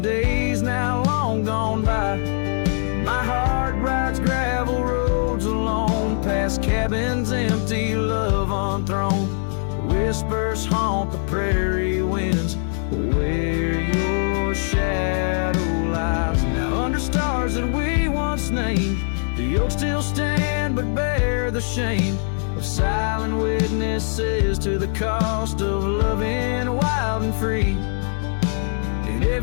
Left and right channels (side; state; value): right; silent; digital silence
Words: days now long gone by. My heart rides gravel roads alone, past cabins empty, love unthrown. Whispers haunt the prairie winds where your shadow lies. Now under stars that we once named, the oaks still stand but bear the shame of silent witnesses to the cost of loving wild and free. In